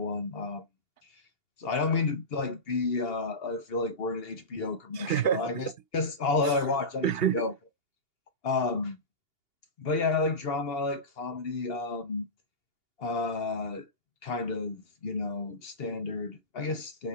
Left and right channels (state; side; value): late; right; 2.8 ms